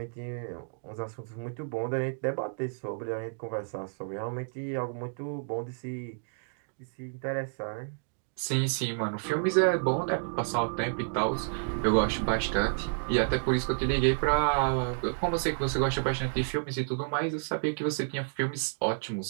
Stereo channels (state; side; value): silent; left; digital silence